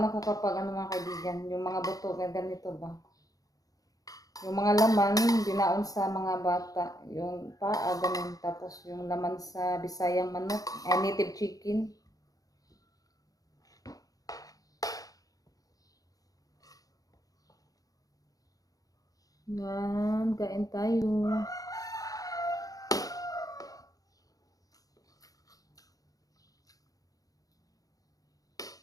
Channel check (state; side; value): late; right; 0.17 ms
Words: ako kapag mga kaibigan. Yung mga buto, ganito ba? Yung mga laman, binaon sa mga bata. Yung paa, ganun. Tapos yung laman sa Bisayang manok. Native chicken. Yan, kain tayo.